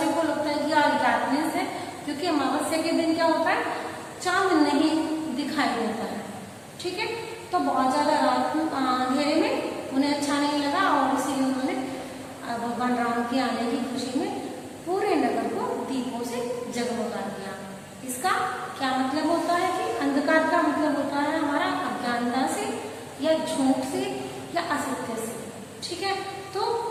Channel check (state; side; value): identical; both; correlation 1.00